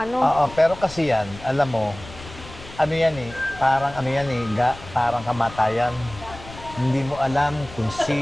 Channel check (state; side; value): noise; left; rumble, 16 dB below the sound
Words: Oo, pero kasi yan, alam mo, parang kamatayan. Hindi mo alam kung